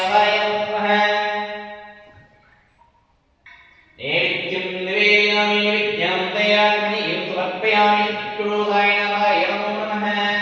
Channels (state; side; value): identical; both; correlation 1.00